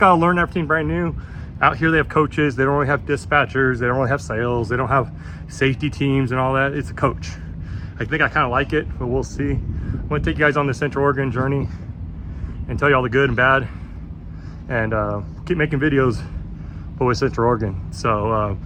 learn everything brand new. Out here they have coaches. They don't really have dispatchers. They don't really have sales. They don't have safety teams and all that. It's a coach. I think I kind of like it, but we'll see. I'm gonna take you guys on the Central Oregon journey and tell you all the good and bad, and keep making videos but with Central Oregon. So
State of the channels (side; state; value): both; identical; correlation 1.00